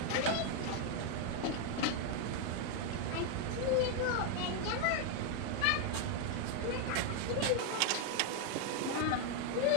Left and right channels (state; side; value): different; both; correlation 0.01